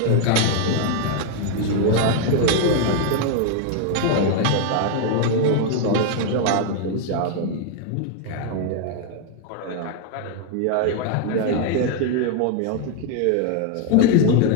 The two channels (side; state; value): both; different; correlation 0.00